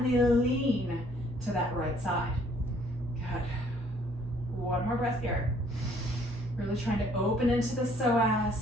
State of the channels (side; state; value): right; noise; hum, 13 dB below the sound